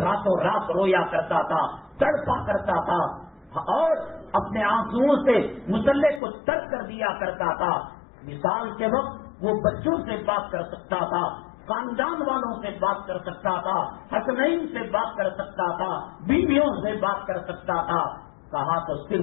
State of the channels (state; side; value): drops out; right; at 6.2 s